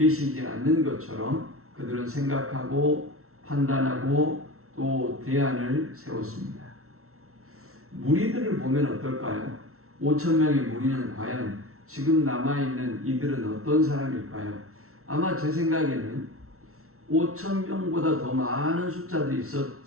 않는 것처럼 그들은 생각하고 판단하고 또 대안을 세웠습니다. 무리들을 보면 어떨까요? 5,000명의 무리는 과연 지금 남아있는 이들은 어떤 사람일까요? 아마 제 생각에는 5,000명보다 더 많은 숫자들이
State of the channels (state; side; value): late; left; 0.63 ms